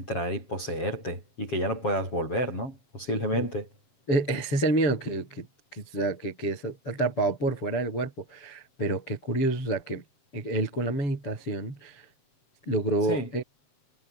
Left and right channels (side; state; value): right; late; 7.5 ms